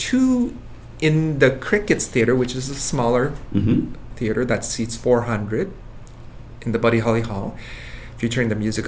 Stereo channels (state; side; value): identical; both; correlation 1.00